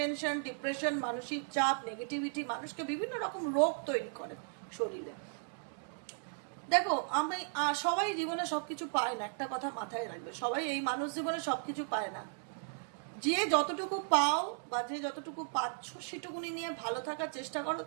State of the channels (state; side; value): silent; left; digital silence